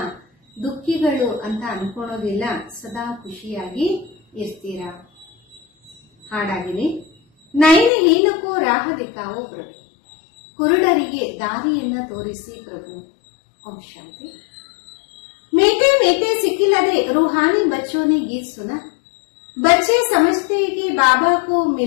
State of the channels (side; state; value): right; drops out; at 7.9 s